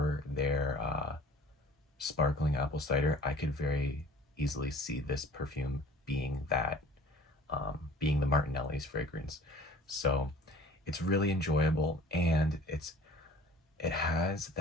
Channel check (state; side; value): normal; both; correlation 0.47